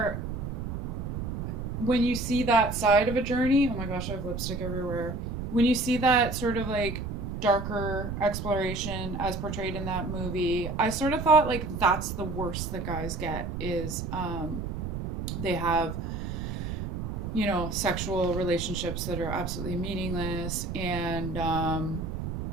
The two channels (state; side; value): noise; right; rumble, 5 dB below the sound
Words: when you see that side of a journey, oh my gosh, I have lipstick everywhere. When you see that sort of like darker exploration as portrayed in that movie, I sort of thought like that's the worst that guys get is they have sexual relationships that are absolutely meaningless and